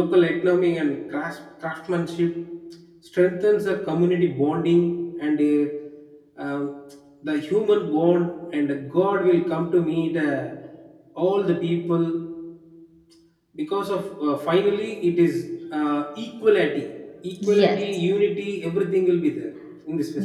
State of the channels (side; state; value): both; identical; correlation 1.00